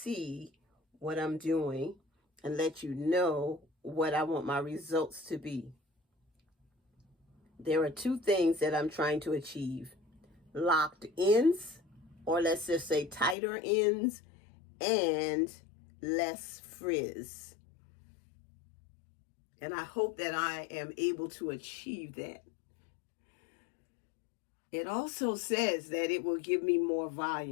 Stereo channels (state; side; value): drops out; right; at 13.4 s